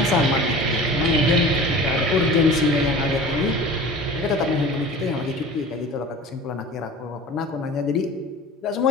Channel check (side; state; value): both; normal; correlation 0.39